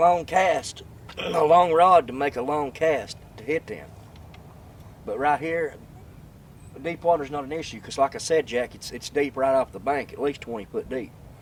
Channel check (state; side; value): identical; both; correlation 1.00